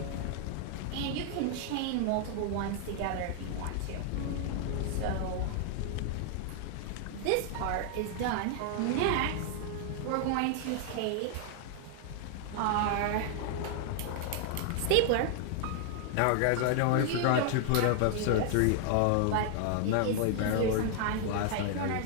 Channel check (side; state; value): both; different; correlation 0.00